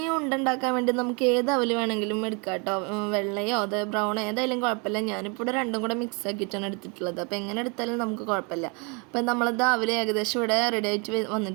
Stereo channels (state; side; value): quieter; left; 32.7 dB